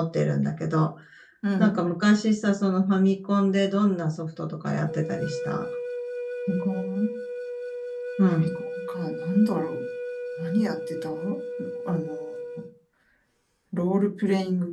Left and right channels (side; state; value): both; identical; correlation 1.00